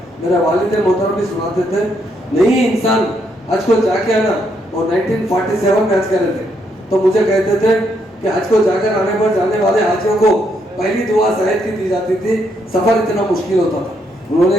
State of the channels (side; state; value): both; normal; correlation 0.75